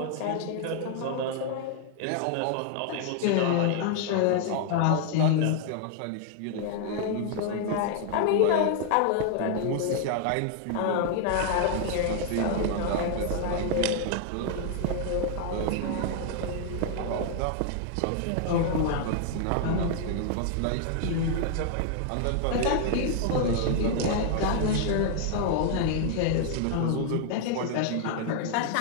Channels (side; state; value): both; different; correlation 0.00